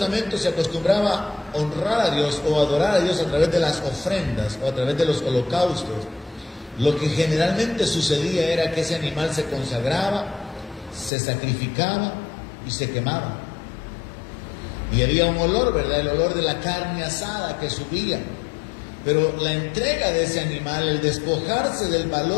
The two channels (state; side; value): drops out; right; at 11.1 s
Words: se acostumbraba a honrar a Dios o adorar a Dios a través de las ofrendas o a través de los holocaustos, lo que generalmente sucedía era que ese animal se consagraba, se sacrificaba y se quemaba. Y había un olor, ¿verdad? El olor de la carne asada que subía. Pero la entrega de ese animal, el despojarse del